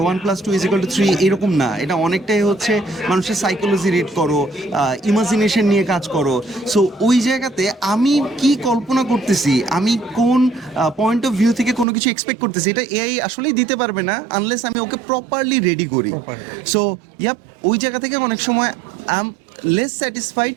এরকম না। এটা অনেকটাই হচ্ছে মানুষের সাইকোলজি রিড করো, ইমাজিনেশন নিয়ে কাজ করো। সো ওই জায়গাতে আমি কি কল্পনা করতেছি, আমি কোন পয়েন্ট অফ ভিউ থেকে কোনো কিছু এক্সপেক্ট করতেছি, এটা এআই আসলেই দিতে পারবে না আনলেস আমি ওকে প্রপারলি রেডি করি। সো ওই জায়গা থেকে অনেক সময় I am less satisfied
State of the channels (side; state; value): left; drops out; at 11.9 s